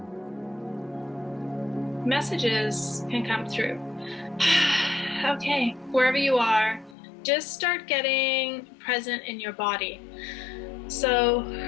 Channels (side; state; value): right; drops out; at 7.0 s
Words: messages can come through. Okay, wherever you are, just start getting present in your body. So